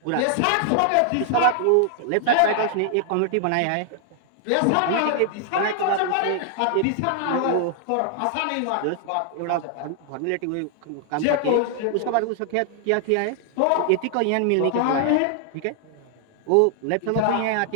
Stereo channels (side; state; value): both; different; correlation 0.00